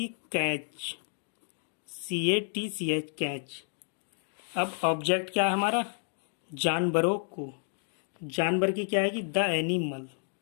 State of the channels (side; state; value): right; silent; digital silence